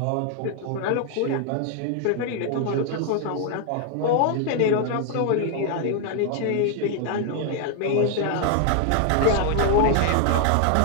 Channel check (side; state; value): both; different; correlation 0.00